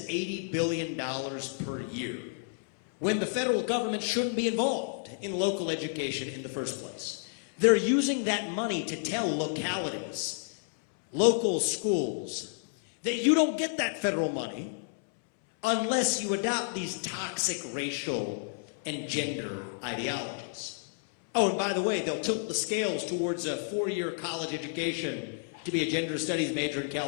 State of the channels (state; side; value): silent; right; 57 dB below the other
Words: $80 billion per year, when the federal government shouldn't be involved in local education in the first place. They're using that money to tell localities, local schools, that you don't get that federal money unless you adopt these toxic racial and gender ideologies. Oh, by the way, they'll tilt the scales towards a 4-year college education to be a gender studies major in